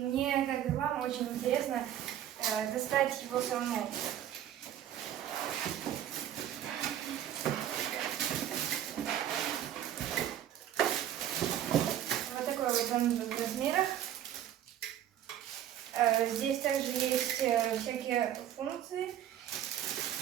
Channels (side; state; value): left; quieter; 11.1 dB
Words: мне, как и вам, очень интересно достать его самому. В размерах. Здесь также есть всякие функции.